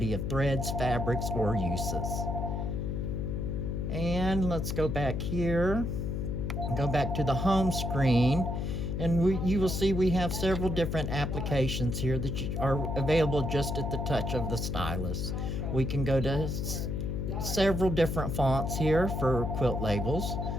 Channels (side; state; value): left; noise; hum, 2 dB below the sound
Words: of threads, fabrics, or uses. And let's go back here, go back to the home screen, and you will see we have several different applications here that are available just at the touch of the stylus. We can go to several different fonts here for quilt labels.